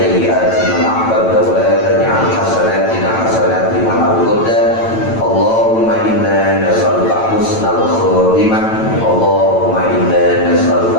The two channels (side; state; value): right; late; 9.0 ms